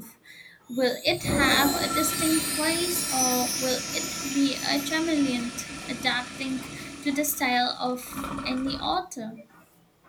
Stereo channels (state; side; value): identical; both; correlation 1.00